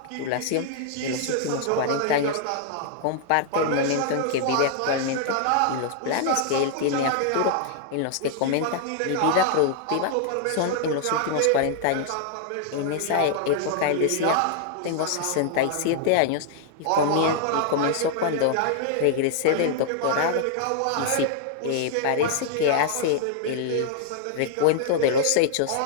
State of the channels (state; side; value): different; both; correlation -0.01